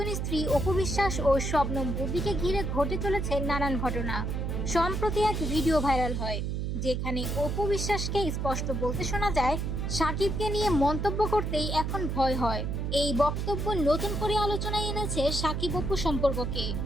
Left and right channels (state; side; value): noise; right; hum, 1 dB below the sound